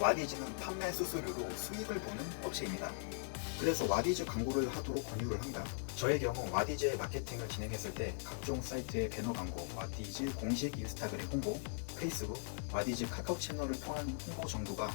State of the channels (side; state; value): right; silent; 51 dB below the other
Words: 판매 수수료로 수익을 보는 업체입니다. 그래서 와디즈 광고를 하도록 권유를 합니다. 저의 경우 와디즈의 마케팅을 진행했을 때 각종 사이트의 배너 광고, 와디즈 공식 인스타그램 홍보, 페이스북, 와디즈 카카오 채널을 통한 홍보 정도가